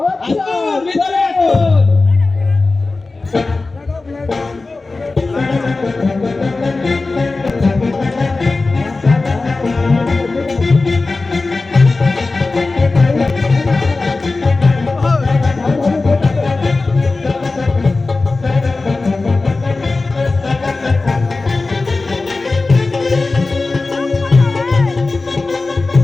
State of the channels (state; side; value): quieter; right; 3.6 dB